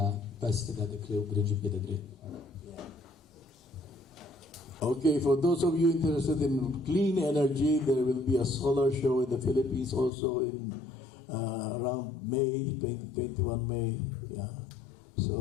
بس كده ذكره وبرنج بيدا دري. Okay, for those of you interested in clean energy, there will be a solar show in the Philippines also in around May, 2021 May. Yeah.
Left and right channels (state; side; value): drops out; right; at 10.1 s